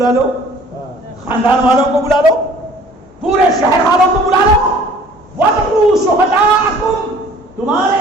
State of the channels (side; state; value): both; normal; correlation 0.52